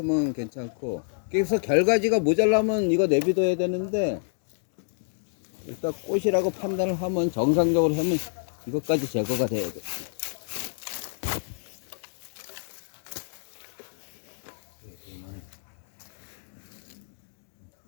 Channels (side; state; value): right; silent; digital silence